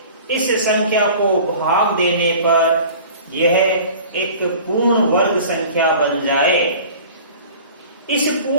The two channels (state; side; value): inverted; both; correlation -0.44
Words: इस संख्या को भाग देने पर यह एक पूर्ण वर्ग संख्या बन जाए। इस